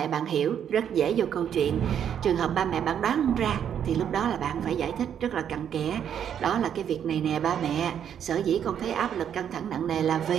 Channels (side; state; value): left; quieter; 8.9 dB